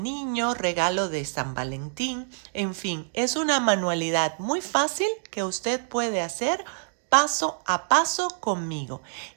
Niño, regalo de San Valentín. En fin, es una manualidad muy fácil que usted puede hacer paso a paso conmigo.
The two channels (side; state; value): left; silent; digital silence